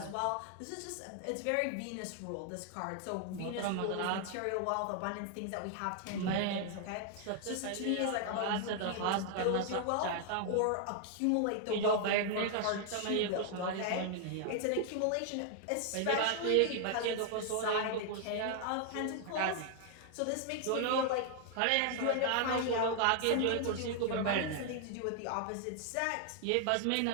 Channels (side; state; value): both; different; correlation 0.00